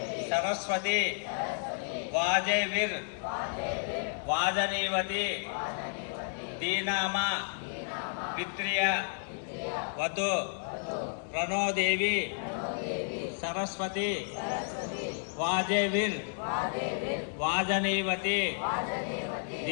सरस्वती वाजैर् वाजनीवती दीनामा पित्र्य वतु प्रणो देवी सरस्वती वाजैर् वाजनीवती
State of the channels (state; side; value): silent; right; 56 dB below the other